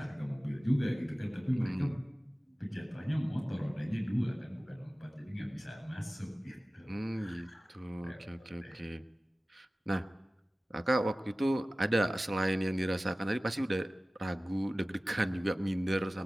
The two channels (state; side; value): normal; both; correlation 0.97